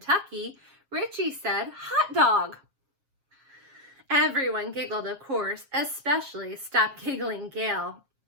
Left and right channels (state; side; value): late; left; 7.4 ms